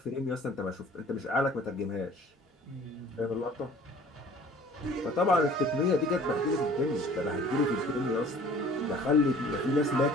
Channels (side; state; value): both; normal; correlation 0.50